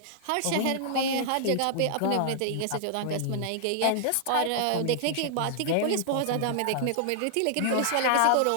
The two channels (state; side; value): different; both; correlation -0.01